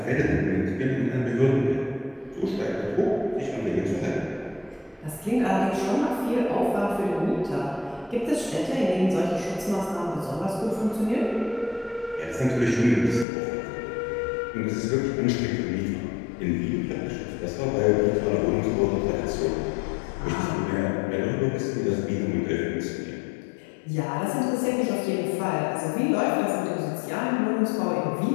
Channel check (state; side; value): drops out; right; at 13.2 s